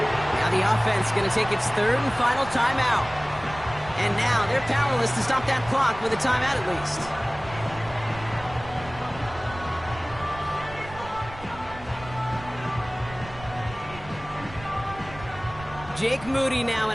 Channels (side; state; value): right; noise; rumble, 16 dB below the sound